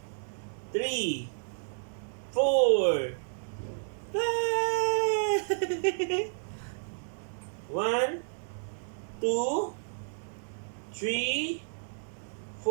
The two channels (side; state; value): left; silent; digital silence